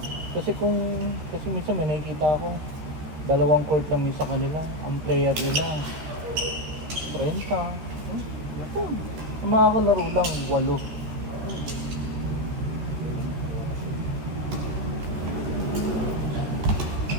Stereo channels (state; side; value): late; left; 14 ms